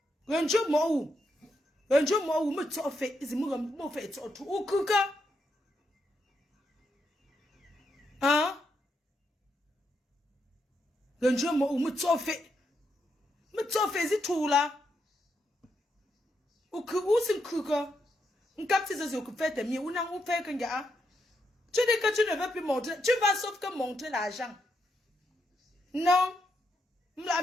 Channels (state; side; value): normal; both; correlation 0.81